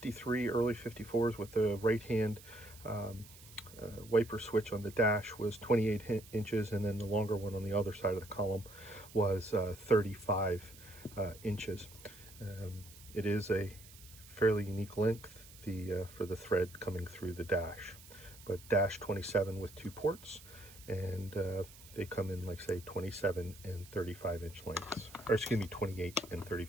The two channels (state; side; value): noise; right; hiss, 19 dB below the sound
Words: early 54s with the right hand wiper switch on the dash was 28 inches, and then the longer one on the other side of the column was 35 inches. It is a fairly unique length for the thread coming through the dash, but dash 27 with two ports, and they come in, like, say, 27 and 35 inch lengths, or excuse me, 28 and